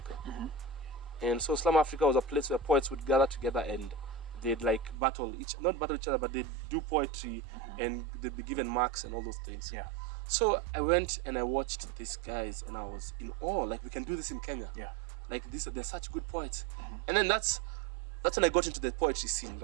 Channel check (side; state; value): left; drops out; at 5.0 s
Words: And so Slum Africa was a place where poets would gather together and they'd like not battle each other, but they'd do poetry and they'd be given marks and all those things. Yeah. So I went and I watched these guys and I was in awe. Like, we can do this in Kenya. Yeah. Like, they're such good poets. And then that's when I got into the poetry scene,